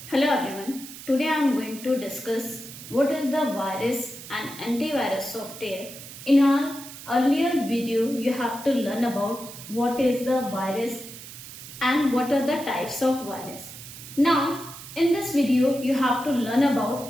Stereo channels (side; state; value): right; noise; hiss, 14 dB below the sound